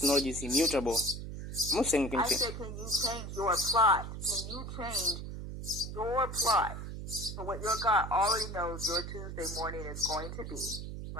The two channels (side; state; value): right; noise; hum, 8 dB below the sound